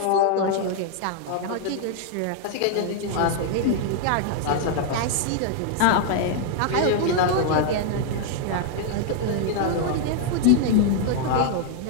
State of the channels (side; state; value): both; different; correlation 0.00